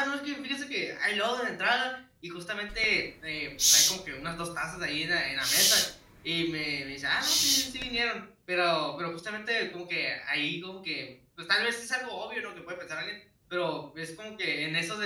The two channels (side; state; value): both; identical; correlation 1.00